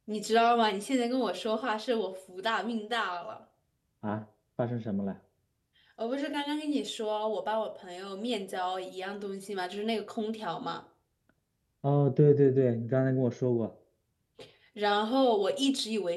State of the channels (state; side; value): identical; both; correlation 1.00